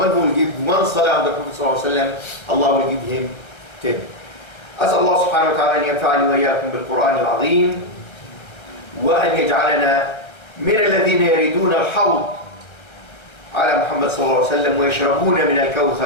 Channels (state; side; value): late; right; 1.3 ms